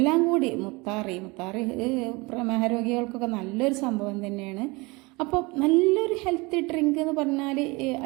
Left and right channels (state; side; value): quieter; left; 25.2 dB